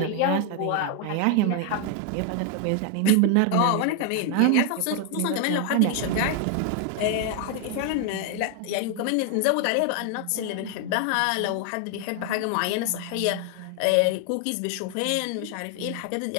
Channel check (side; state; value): both; different; correlation 0.00